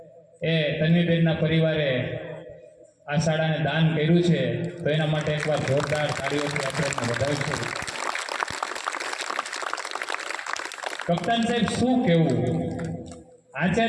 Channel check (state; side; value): identical; both; correlation 1.00